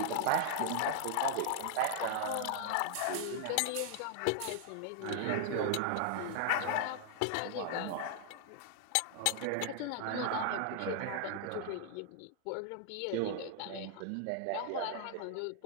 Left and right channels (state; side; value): different; both; correlation 0.00